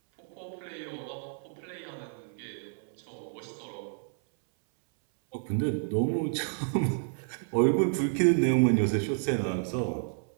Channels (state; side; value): silent; left; 58 dB below the other